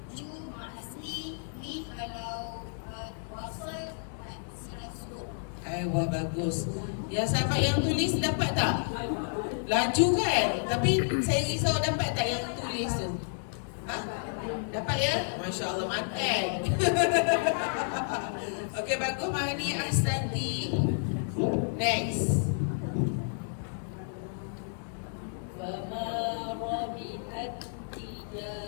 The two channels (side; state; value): right; silent; digital silence